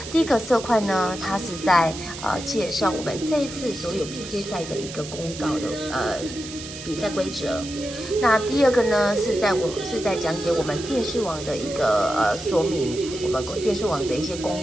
第一个色块呢，它是在介绍我们这一次所有 PK 赛的一个公告的比赛规则。那第二个呢，是在讲解我们电视网的一个说明，我们电视网的一些公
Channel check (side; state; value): right; noise; hiss, 12 dB below the sound